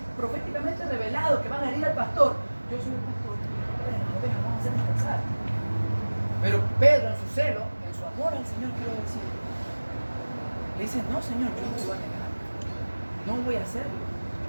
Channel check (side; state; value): both; inverted; correlation -1.00